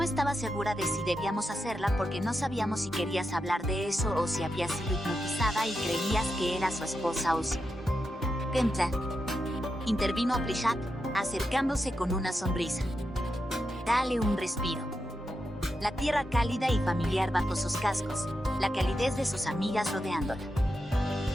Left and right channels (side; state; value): both; normal; correlation 0.87